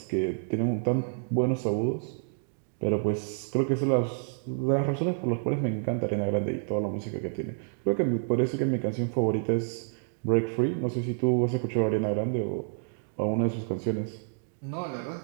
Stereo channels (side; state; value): left; silent; digital silence